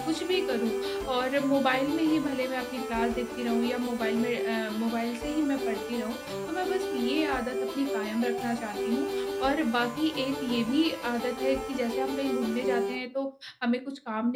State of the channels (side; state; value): both; identical; correlation 1.00